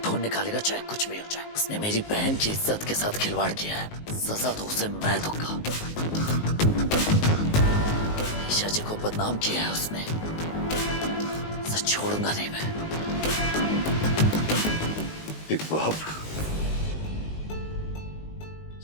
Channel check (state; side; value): late; right; 19 ms